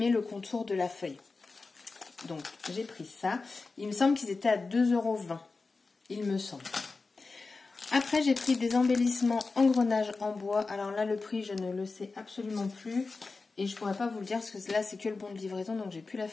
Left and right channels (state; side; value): quieter; right; 4.0 dB